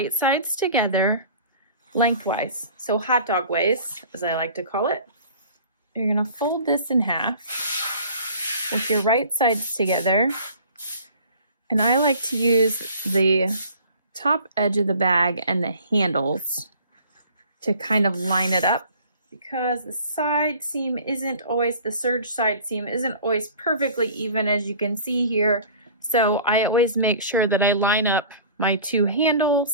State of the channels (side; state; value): both; inverted; correlation -0.47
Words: sides together lengthwise. So hot dog ways, as I like to call it. You're going to fold this in half with your right sides together. And I like to use the top edge of the bag and the handles to kind of line it up, because the side seam isn't always, the serge side seam isn't always perfectly even, as you can see here. So I always make sure that I line up my two